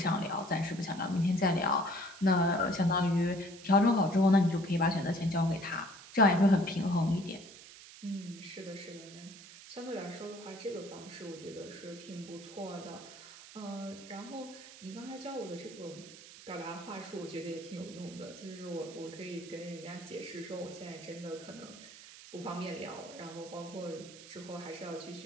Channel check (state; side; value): noise; right; hiss, 17 dB below the sound